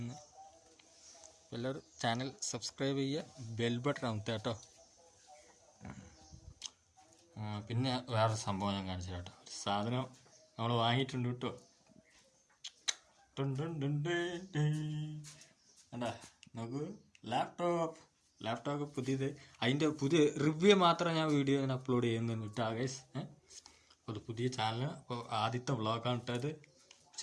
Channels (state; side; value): identical; both; correlation 1.00